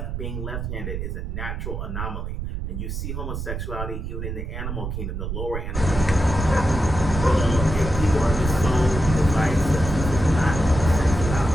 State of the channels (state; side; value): noise; right; rumble, 5 dB below the sound